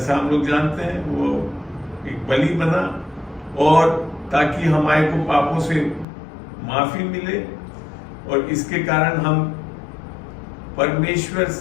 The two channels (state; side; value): drops out; right; at 6.1 s